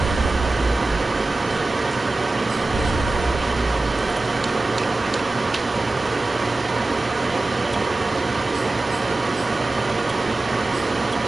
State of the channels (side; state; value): left; quieter; 3.1 dB